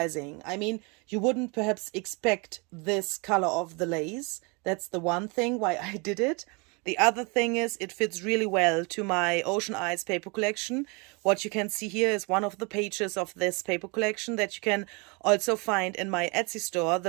I mean, you wouldn't perhaps expect this color of the lace. That's the one thing why I did it. The other thing is it fits really well to my Ocean Eyes paper collection. What you can see here is one of the pages of this paper collection that you can also find in my Etsy store.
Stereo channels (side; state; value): left; quieter; 30.6 dB